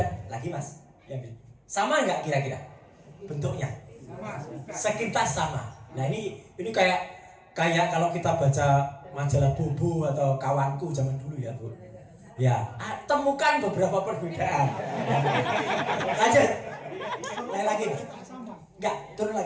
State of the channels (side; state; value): both; identical; correlation 1.00